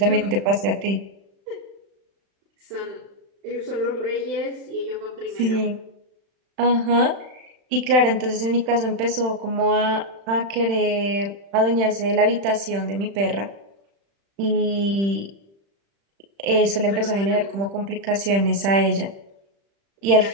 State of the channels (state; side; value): late; left; 35 ms